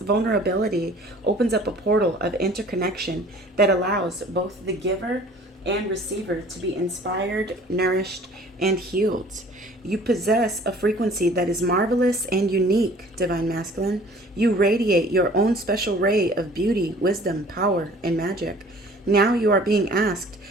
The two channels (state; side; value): normal; both; correlation 0.50